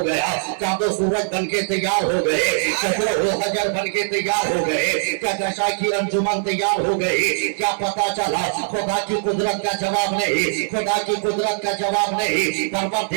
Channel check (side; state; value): left; silent; digital silence